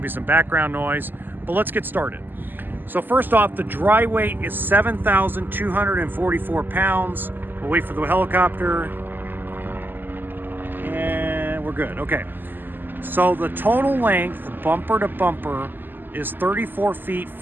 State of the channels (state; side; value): late; left; 0.091 ms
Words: be some background noise, but let's get started. So first off, the dry weight is 7,244 pounds. We'll wait for the helicopter. And we're good, okay. So the total length, bumper to bumper, is 34 feet